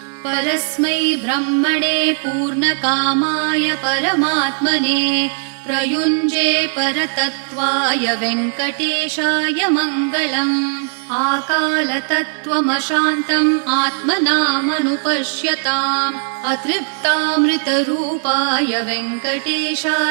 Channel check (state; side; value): silent; left; 61 dB below the other